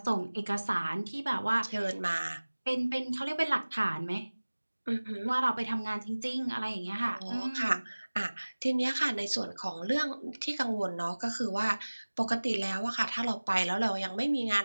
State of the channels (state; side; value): inverted; both; correlation -1.00